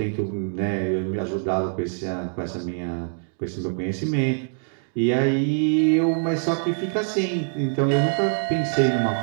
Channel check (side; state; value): left; silent; 63 dB below the other